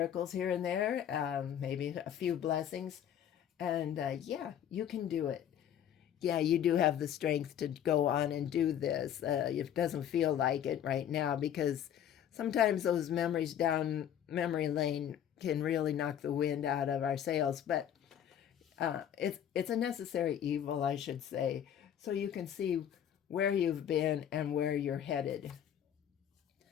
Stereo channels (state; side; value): quieter; right; 9.8 dB